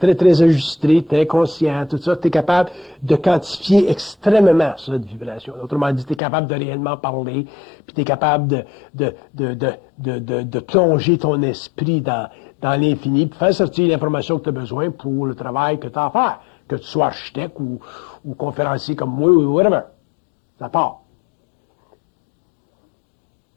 très ajusté, très conscient, tout ça, tu es capable de quantifier extrêmement cette vibration. Autrement dit, tu es capable de réellement parler, puis tu es capable de plonger ton esprit dans l'infini, puis faire sortir l'information que tu as besoin pour le travail que tu as à faire, que tu sois architecte ou conférencier comme moi ou whatever. Ça part.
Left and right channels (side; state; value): right; drops out; at 6.2 s